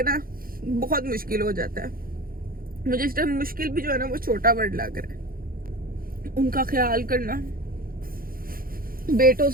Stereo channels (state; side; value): late; left; 0.42 ms